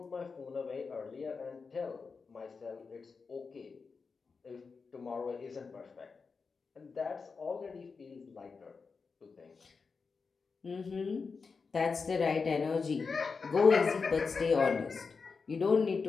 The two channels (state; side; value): quieter; right; 4.9 dB